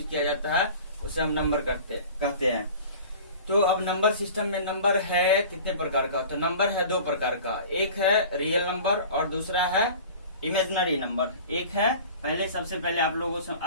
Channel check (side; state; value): both; inverted; correlation -0.41